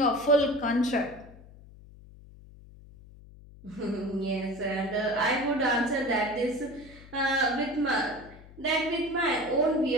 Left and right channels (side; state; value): left; noise; hum, 20 dB below the sound